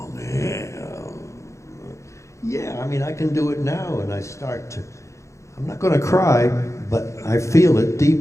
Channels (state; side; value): late; right; 0.14 ms